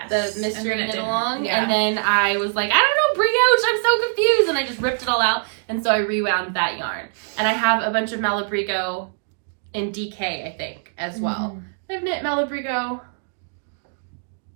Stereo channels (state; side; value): silent; left; digital silence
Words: The mystery knit along. Yeah. And then I was like, I don't know, brioche, I'm so confused. And I just ripped it all out. And so I rewound that yarn. And I have a bunch of Malabrigo in DK, I think, as well. I've knit Malabrigo